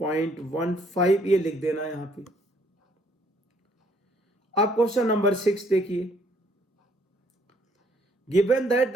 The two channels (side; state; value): both; normal; correlation 0.65